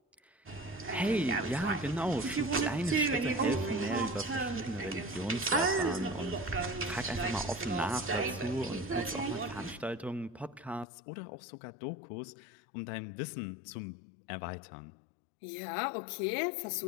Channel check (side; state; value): right; drops out; at 10.9 s